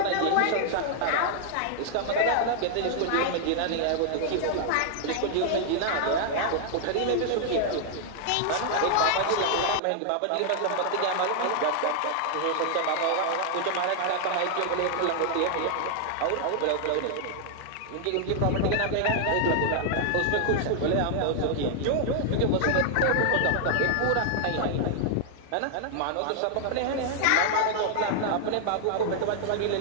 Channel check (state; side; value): different; both; correlation -0.01